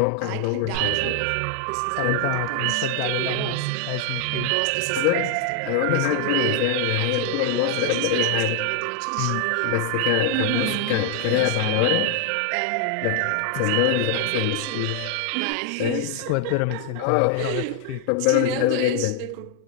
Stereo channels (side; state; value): both; different; correlation 0.00